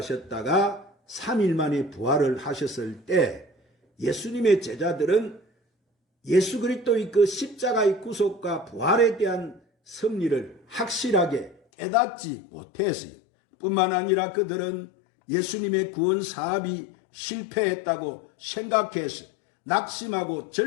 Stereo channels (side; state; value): right; drops out; at 11.6 s